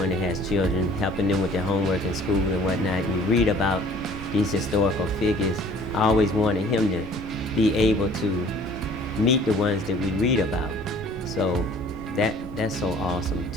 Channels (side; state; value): both; normal; correlation 0.52